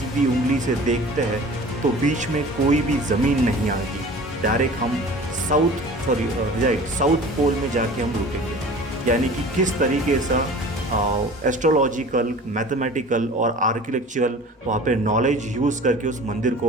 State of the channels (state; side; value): normal; both; correlation 0.41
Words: उंगली से देखते हैं तो बीच में कोई भी ज़मीन नहीं आएगी। डायरेक्ट हम साउथ पोल में जाके हम रुकेंगे। यानी कि किस तरीके से एस्ट्रोलॉजिकल, मैथमेटिकल और आर्किटेक्चरल वहाँ पे नॉलेज यूज़ करके उस मंदिर